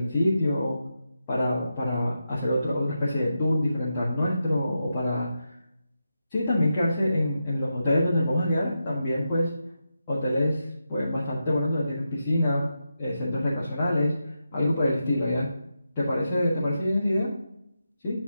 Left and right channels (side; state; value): both; inverted; correlation -0.87